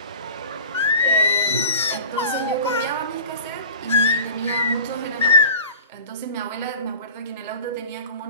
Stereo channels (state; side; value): inverted; both; correlation -0.41